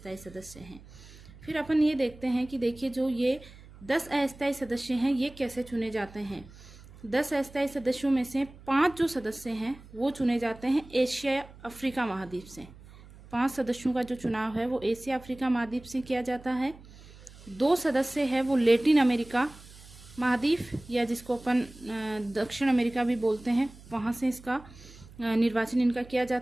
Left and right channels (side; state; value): right; noise; hum, 20 dB below the sound